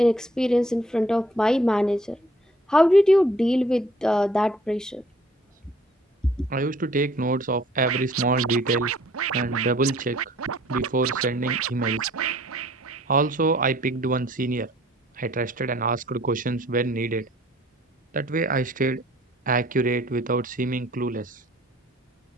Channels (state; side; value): normal; both; correlation 0.58